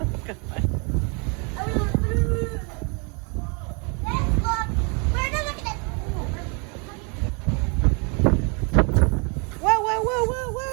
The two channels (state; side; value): quieter; left; 34.0 dB